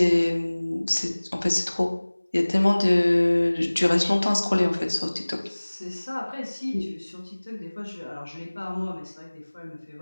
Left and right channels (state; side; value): inverted; both; correlation -1.00